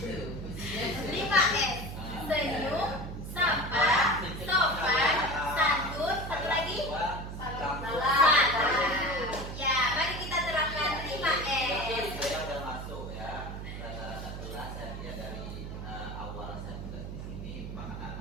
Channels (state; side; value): noise; right; hum, 8 dB below the sound